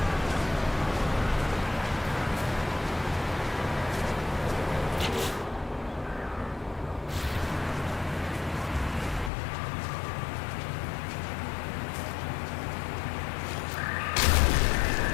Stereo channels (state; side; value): drops out; right; at 9.3 s